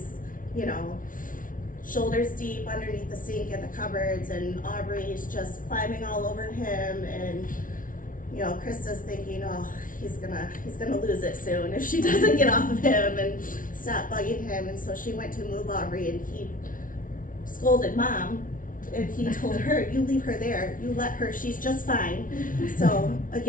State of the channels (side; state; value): right; late; 0.39 ms